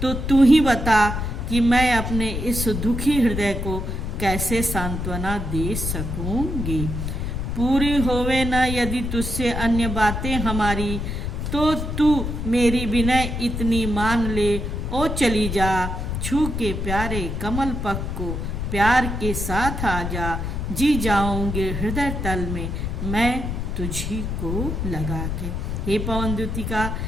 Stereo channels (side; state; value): left; noise; rumble, 3 dB below the sound